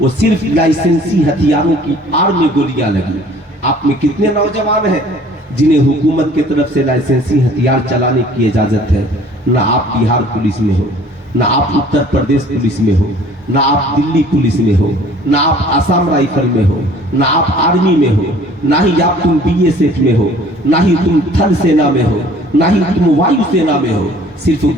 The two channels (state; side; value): normal; both; correlation 0.52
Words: वो सिर्फ लाइसेंसी हथियारों की आड़ में गोलियां लगी। आप में कितने नौजवान हैं जिन्हें हुकूमत की तरफ से लाइसेंसी हथियार चलाने की इजाजत है? ना आप बिहार पुलिस में हो, ना आप उत्तर प्रदेश पुलिस में हो, ना आप दिल्ली पुलिस में हो, ना आप आसाम राइफल में हो, ना आप आर्मी में हो, ना ही आप तुम बीएसएफ में हो, ना ही तुम थल सेना में हो, ना ही तुम वायु सेना में हो। सिर्फ